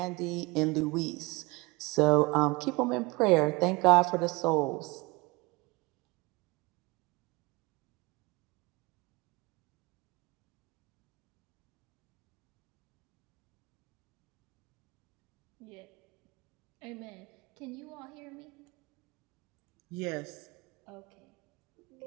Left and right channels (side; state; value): left; quieter; 23.8 dB